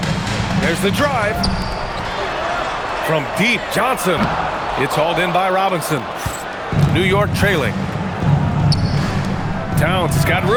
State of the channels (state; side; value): identical; both; correlation 1.00